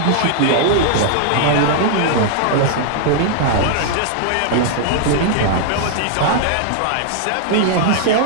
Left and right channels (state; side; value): different; both; correlation -0.01